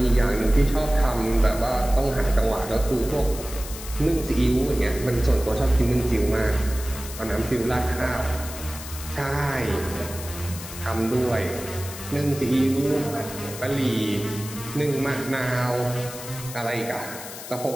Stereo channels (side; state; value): left; noise; hiss, 12 dB below the sound